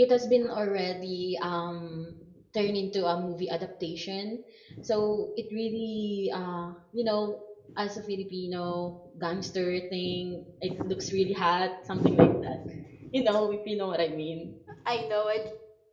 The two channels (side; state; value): both; identical; correlation 1.00